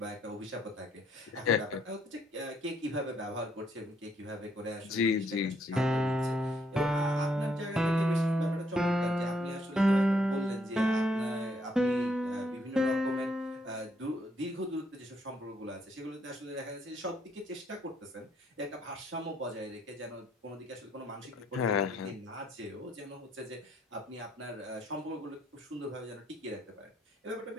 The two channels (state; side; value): normal; both; correlation 0.70